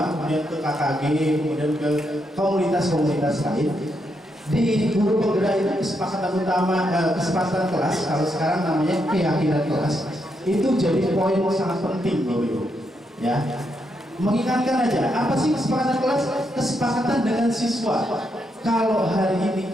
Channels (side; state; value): both; normal; correlation 0.80